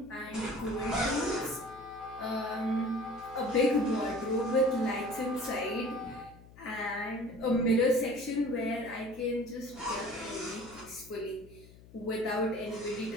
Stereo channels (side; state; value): left; noise; hum, 21 dB below the sound